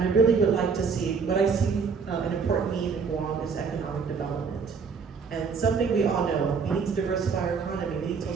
I really would like to see, what I see an important need in Guam is economic development. And something we all know, we need to diversify our economy, we need to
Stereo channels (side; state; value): left; quieter; 5.5 dB